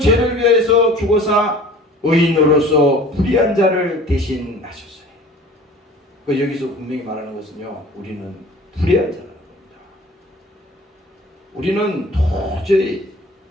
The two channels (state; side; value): normal; both; correlation 0.46